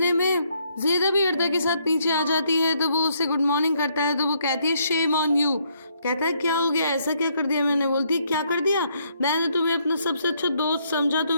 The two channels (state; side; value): inverted; both; correlation -0.71